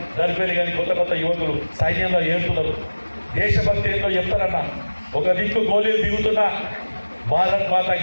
దర్పేలి కానీ కొత్త యువకులు సైన్యంలో ఏరుతున్నారు. దేశభక్తి ఏంటో చెప్తారన్న. ఒక దిక్కు గోళీలు దిగుతున్నా భారత్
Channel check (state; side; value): inverted; both; correlation -1.00